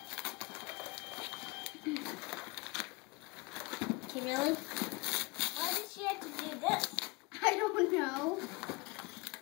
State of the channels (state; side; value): quieter; right; 26.1 dB